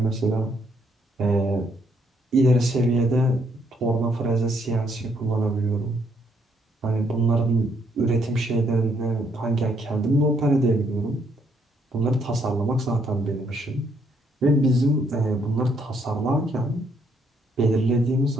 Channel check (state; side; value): normal; both; correlation 0.71